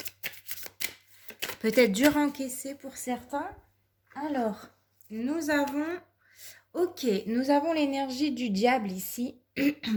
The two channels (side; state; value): both; identical; correlation 1.00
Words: Peut-être dur à encaisser pour certains. Alors, nous avons l'énergie du diable ici,